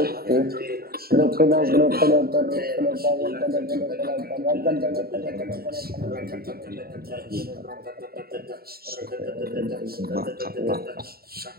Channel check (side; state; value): left; late; 0.44 ms